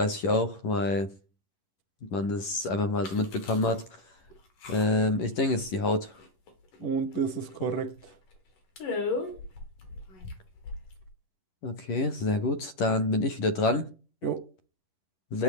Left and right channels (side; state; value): right; late; 11 ms